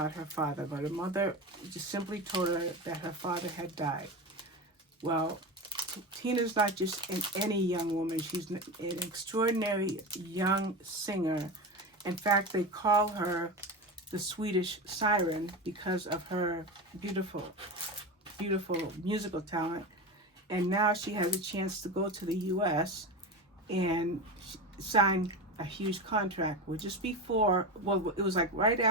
her father, but her mother just simply told her that her father had died. Well, Tina's not just any young woman. She's an extraordinary young singer. In fact, they call her the Swedish Siren because of her beautiful musical talent. And now she has a chance to go to the U.S. and sign a huge contract. Well, just before, it was like right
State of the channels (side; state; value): both; normal; correlation 0.23